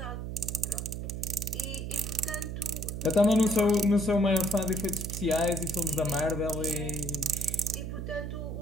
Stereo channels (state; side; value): noise; right; hum, 5 dB below the sound